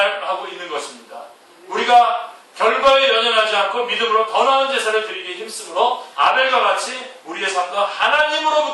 있는 것입니다. 우리가 결과에 연연하지 않고 믿음으로 더 나은 제사를 드리기에 힘쓰므로 아벨과 같이 우리의 삶도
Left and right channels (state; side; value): identical; both; correlation 1.00